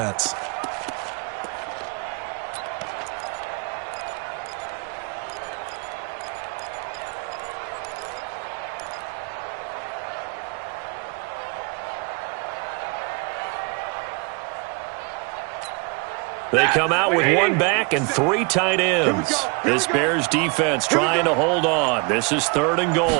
They come out with 1 back and 3 tight ends. This Bears defense trying to hold on. This is 3rd and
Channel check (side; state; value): left; quieter; 31.1 dB